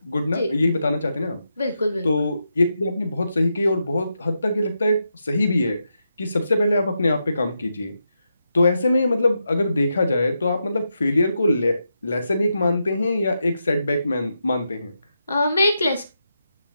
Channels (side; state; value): both; inverted; correlation -0.85